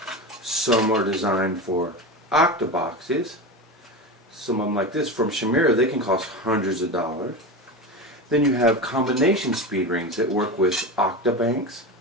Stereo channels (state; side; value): normal; both; correlation 0.23